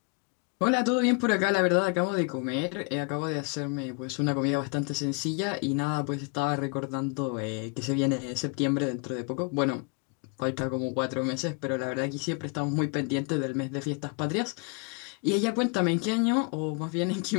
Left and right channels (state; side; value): quieter; right; 34.4 dB